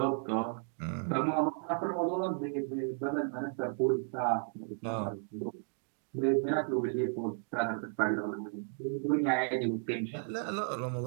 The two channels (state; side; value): silent; left; 55 dB below the other